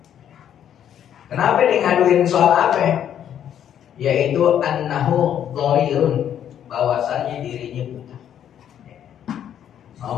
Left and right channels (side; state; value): right; quieter; 9.8 dB